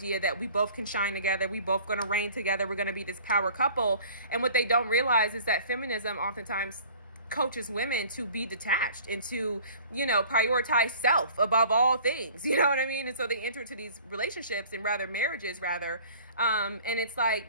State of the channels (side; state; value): both; inverted; correlation -0.48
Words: that we both can shine together, we both gonna reign together, we're gonna be this power couple. And what they don't realize is that feminism oftentimes coaches women to be detached and to, you know, prioritize self above all things, you know what I mean? And so they enter into these relationships and marriages, and it's like,